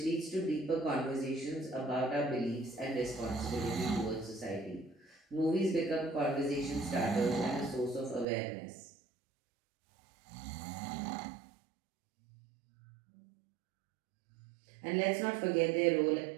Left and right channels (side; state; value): left; drops out; at 8.2 s